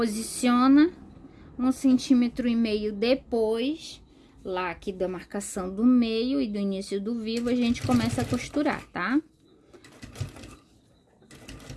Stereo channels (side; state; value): both; identical; correlation 1.00